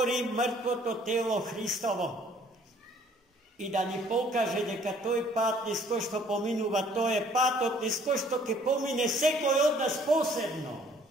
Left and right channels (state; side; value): normal; both; correlation 0.59